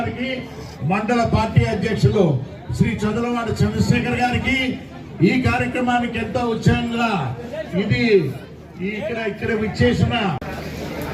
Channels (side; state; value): both; identical; correlation 1.00